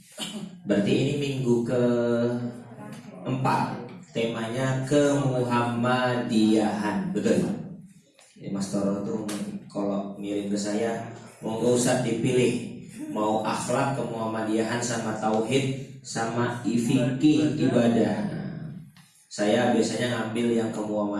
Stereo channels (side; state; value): both; identical; correlation 1.00